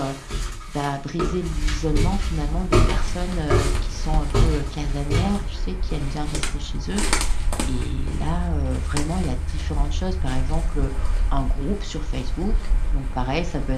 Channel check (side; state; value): both; identical; correlation 1.00